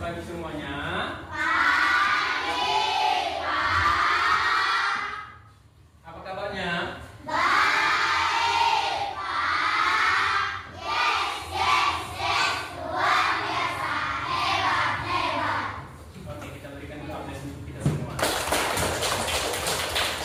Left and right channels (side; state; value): both; identical; correlation 1.00